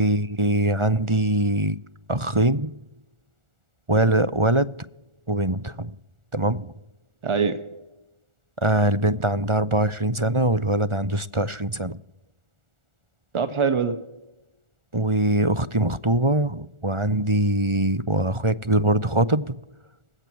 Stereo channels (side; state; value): left; late; 1.4 ms